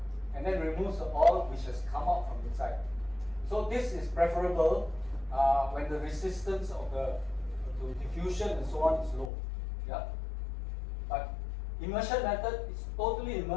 and then removes the oil which has come out from inside. So this is preferable when the resistance of the to diffusion and so on is low. Yeah. But immersion method is totally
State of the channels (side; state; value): right; drops out; at 9.3 s